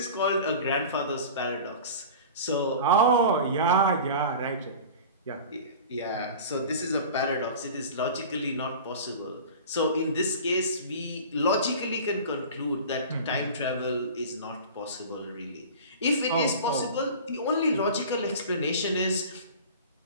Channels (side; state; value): both; inverted; correlation -0.37